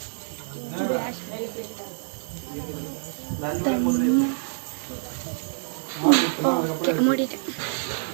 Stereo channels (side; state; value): left; silent; digital silence